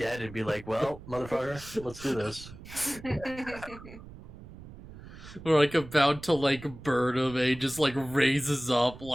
and be like, "Well, motherfucker, let's do this." We're like about to like burn him, and he just like raises up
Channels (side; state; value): right; noise; rumble, 16 dB below the sound